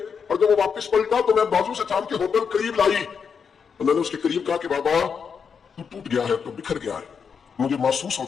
اور جب وہ واپس پلٹا تو میں بازو سے تھام کے ہوٹل قریب لائی، تو میں نے اس کے قریب کہا کہ بابا تو ٹوٹ گیا ہے، تو بکھر گیا ہے، مجھے محسوس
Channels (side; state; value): right; quieter; 6.4 dB